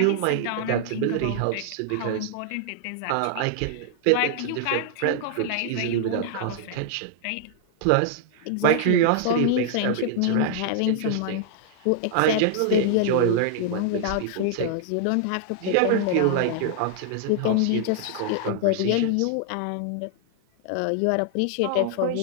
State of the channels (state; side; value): different; both; correlation 0.00